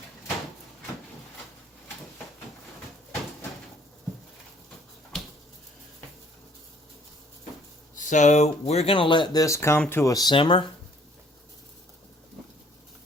So we're going to let this come to a simmer.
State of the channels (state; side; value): normal; both; correlation 0.60